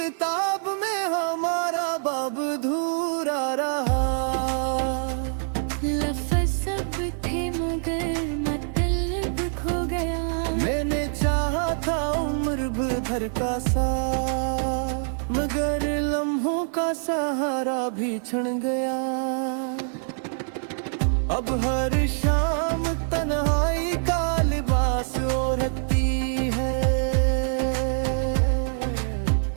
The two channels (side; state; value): left; silent; 61 dB below the other